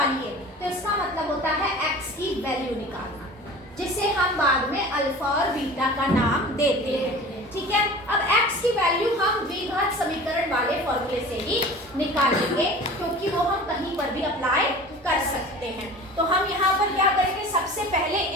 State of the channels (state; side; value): normal; both; correlation 0.39